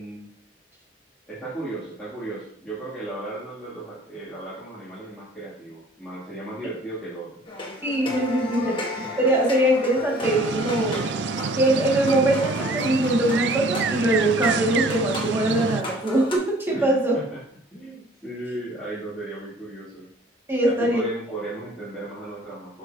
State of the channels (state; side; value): normal; both; correlation 0.53